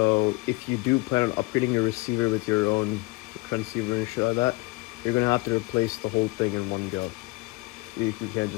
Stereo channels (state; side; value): quieter; right; 23.1 dB